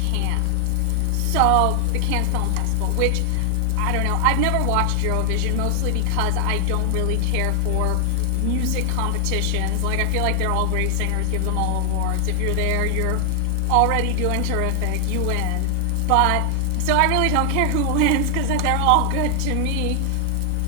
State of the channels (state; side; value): different; both; correlation 0.00